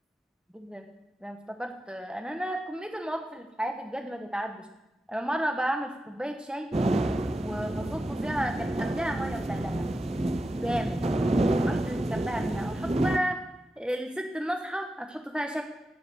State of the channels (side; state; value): both; normal; correlation 0.89